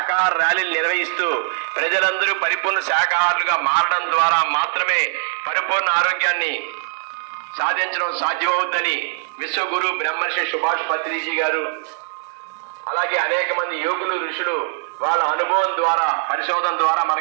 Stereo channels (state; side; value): silent; left; digital silence